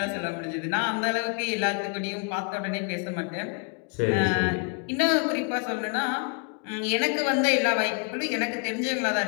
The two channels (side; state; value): right; quieter; 39.4 dB